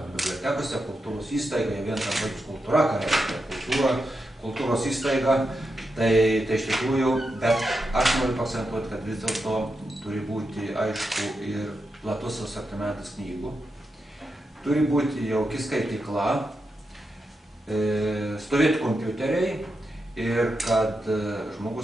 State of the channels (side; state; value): both; normal; correlation 0.87